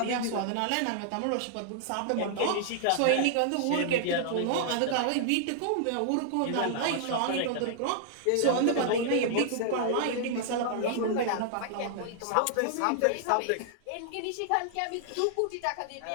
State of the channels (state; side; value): different; both; correlation -0.01